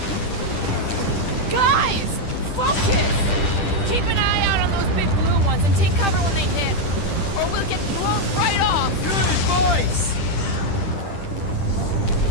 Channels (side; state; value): right; late; 10 ms